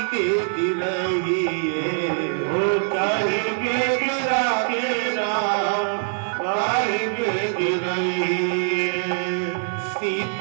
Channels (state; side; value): silent; left; 63 dB below the other